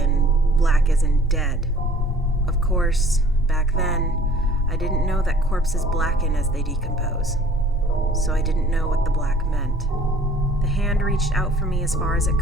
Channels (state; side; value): normal; both; correlation 0.53